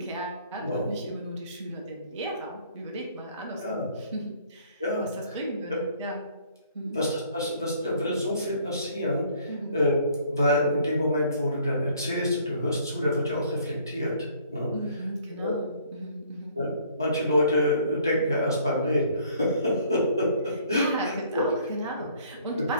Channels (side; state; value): both; inverted; correlation -0.59